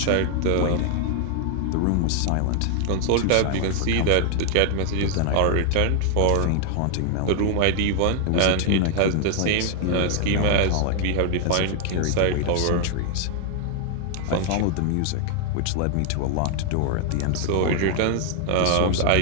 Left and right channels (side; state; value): both; different; correlation 0.00